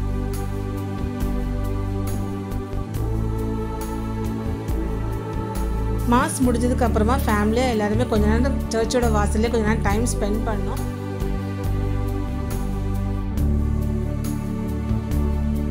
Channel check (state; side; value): identical; both; correlation 1.00